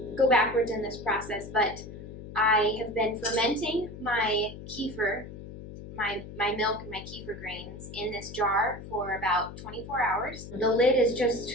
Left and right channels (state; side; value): noise; left; hum, 12 dB below the sound